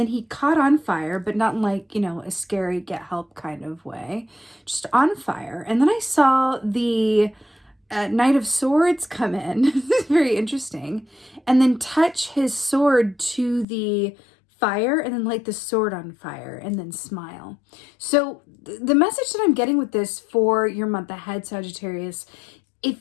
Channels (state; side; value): drops out; right; at 13.7 s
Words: he caught on fire, but not in like, a scary get help kind of way, just on fire. And then I saw the Knight of Swords come in. This is very interesting. And then touch his sword to the fire and then light the sword on fire and then smile. So the message that I'm getting with this for your month ahead, Sagittarius,